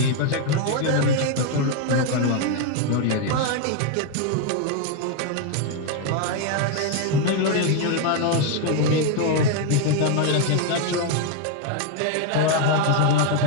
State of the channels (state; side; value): different; both; correlation 0.01